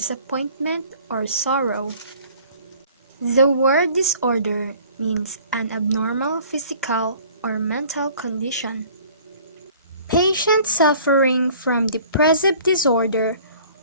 or sorrow. The word disorder means an abnormal physical or mental condition. Patients suffering from depressive disorder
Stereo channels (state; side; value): inverted; both; correlation -0.51